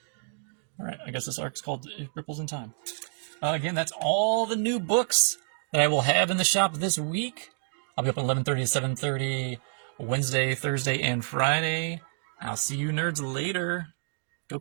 Alright, I guess this arc's called Ripples in Time. Again, that's all the new books that I will have in the shop this week. I'll be up at 11:30 to 7:30 Wednesday, Thursday, and Friday. I'll see you nerds later. Go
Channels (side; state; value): left; silent; digital silence